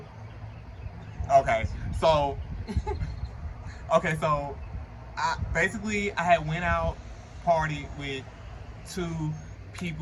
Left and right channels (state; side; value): identical; both; correlation 1.00